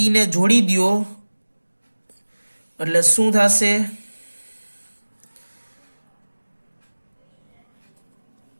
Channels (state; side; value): inverted; both; correlation -1.00